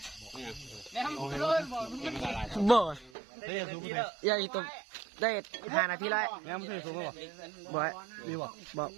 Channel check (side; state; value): left; drops out; at 3.1 s